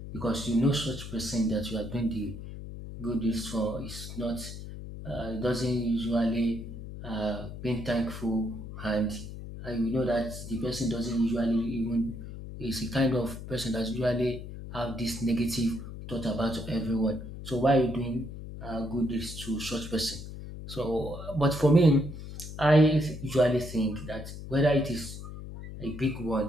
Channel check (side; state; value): left; noise; hum, 10 dB below the sound